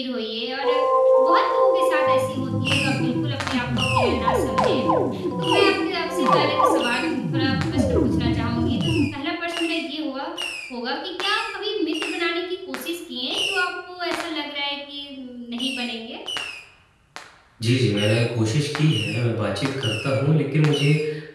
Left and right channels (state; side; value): identical; both; correlation 1.00